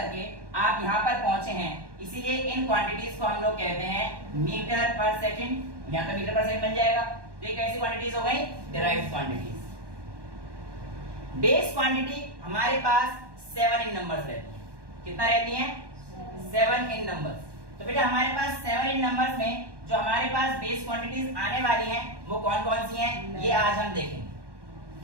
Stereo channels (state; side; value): late; left; 1.1 ms